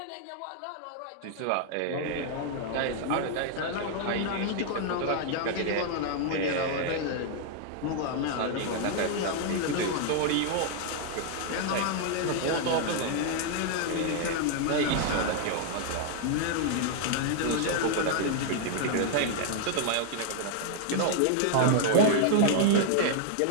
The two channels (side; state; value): both; different; correlation 0.00